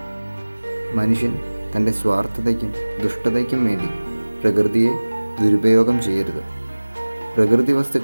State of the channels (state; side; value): inverted; both; correlation -1.00